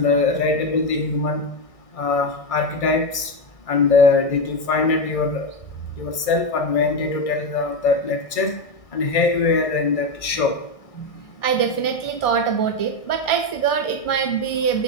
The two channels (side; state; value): right; late; 1.6 ms